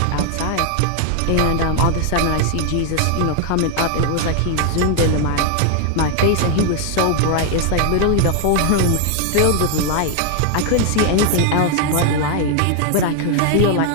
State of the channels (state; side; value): different; both; correlation 0.00